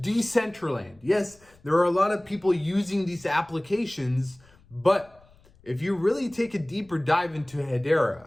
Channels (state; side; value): noise; left; rumble, 29 dB below the sound